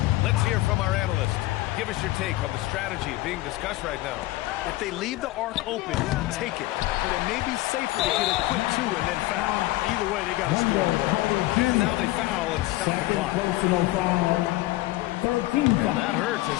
Let's hear from our analyst. give us your take on the strategy being discussed right now. If they leave the arc open, take it. But it may be safer to get a quick 2 and then foul. Either way, they got to score. And now they foul and stop the clock. And that hurts as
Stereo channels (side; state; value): right; quieter; 18.2 dB